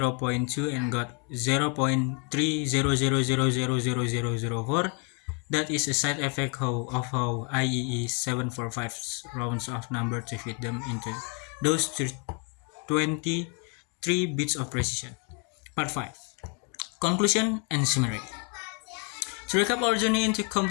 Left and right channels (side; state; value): right; quieter; 36.9 dB